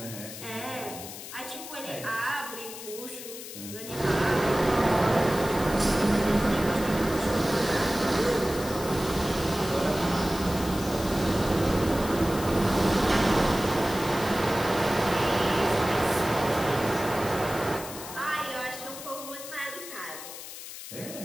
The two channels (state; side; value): noise; left; hiss, 11 dB below the sound